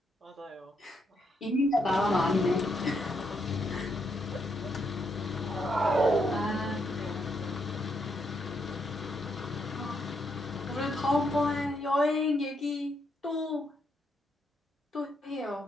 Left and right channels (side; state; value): both; normal; correlation 0.77